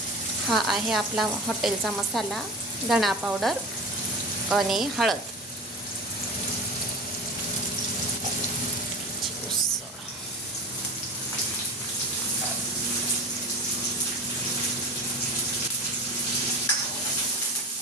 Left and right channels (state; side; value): normal; both; correlation 0.31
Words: हा आहे आपला हॉटेलचा मसाला, धणा पावडर आणि हळद.